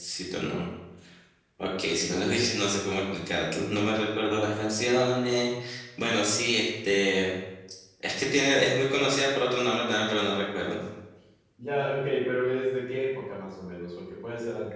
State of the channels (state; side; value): identical; both; correlation 1.00